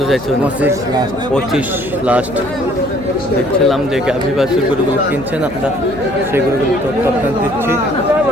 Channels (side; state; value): left; noise; hum, 16 dB below the sound